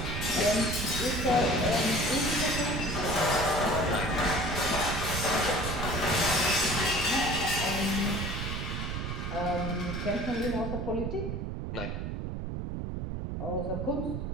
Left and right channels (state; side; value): noise; right; rumble, 3 dB below the sound